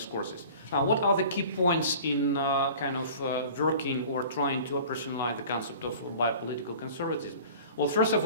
Now, what are the key points in kind of working or trying to operationalize the concept of biopolitical conservatism? Well, first of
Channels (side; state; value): both; inverted; correlation -0.43